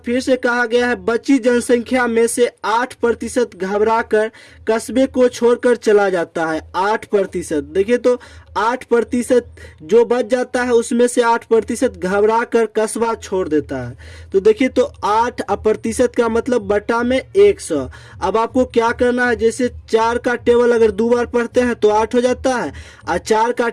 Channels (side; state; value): both; identical; correlation 1.00